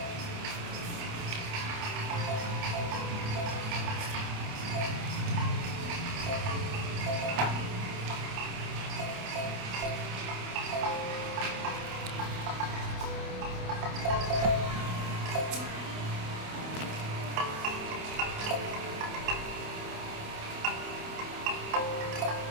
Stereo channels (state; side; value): late; left; 28 ms